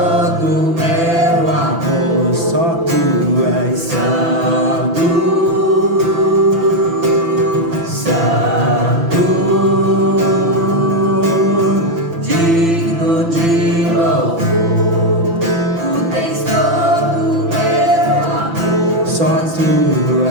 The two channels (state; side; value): late; left; 6.0 ms